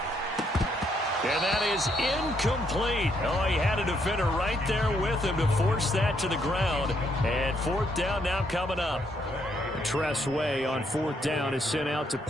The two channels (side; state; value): both; normal; correlation 0.73